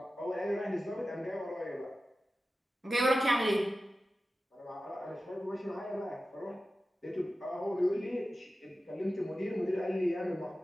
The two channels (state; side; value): normal; both; correlation 0.94